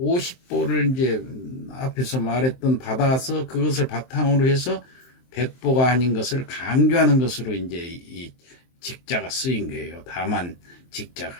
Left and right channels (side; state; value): right; late; 23 ms